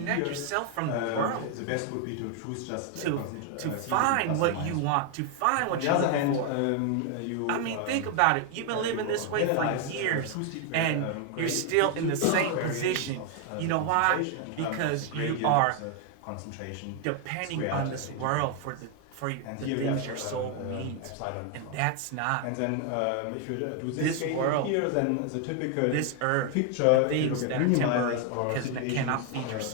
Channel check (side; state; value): both; different; correlation 0.00